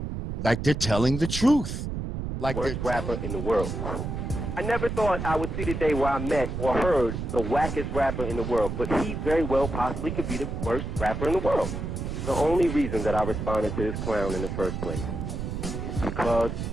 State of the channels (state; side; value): noise; right; rumble, 4 dB below the sound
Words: they're telling the truth. Like Worst rapper in the world. I never thought I would see the day where I met or heard the wackest rapper in the world, but he very well possibly could be the worst rapper in the world. The only reason that I responded to this clown in the first place is because